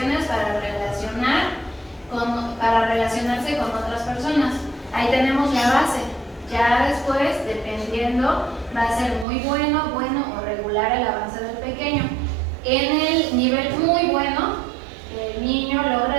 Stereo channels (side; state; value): left; drops out; at 9.2 s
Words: para relacionarse con otras personas. Ahí tenemos la base. Ya después, dependiendo, va a ser muy bueno o regular el avance del pequeño. En el nivel muy bueno, el niño